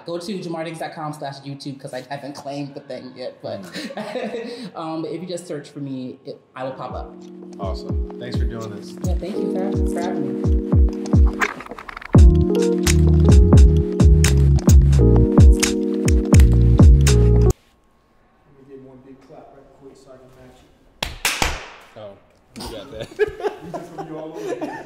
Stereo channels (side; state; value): both; identical; correlation 1.00